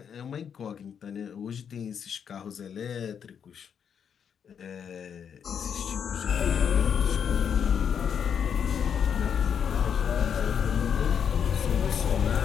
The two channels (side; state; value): right; quieter; 7.7 dB